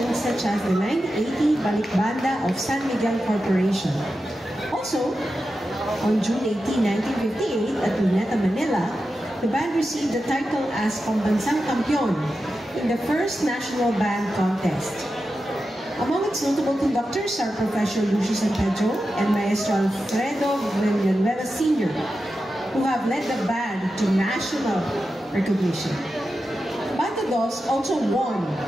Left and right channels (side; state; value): both; normal; correlation 0.91